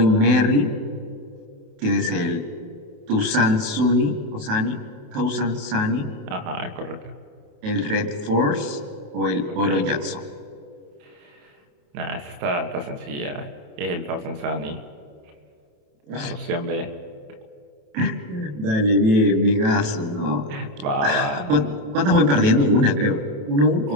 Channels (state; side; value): late; left; 28 ms